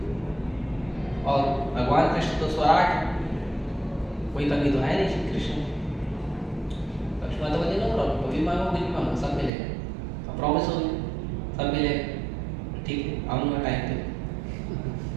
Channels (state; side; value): drops out; left; at 9.5 s